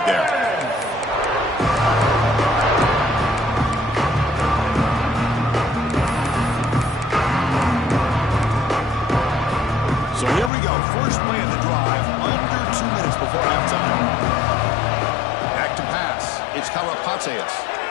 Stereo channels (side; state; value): right; drops out; at 10.5 s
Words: there. So here we go. First play of the drive, under 2 minutes before halftime. Back to pass. It's Karapateas.